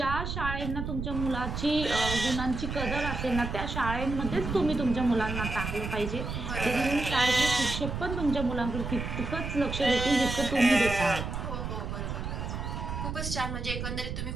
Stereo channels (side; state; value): right; noise; rumble, 5 dB below the sound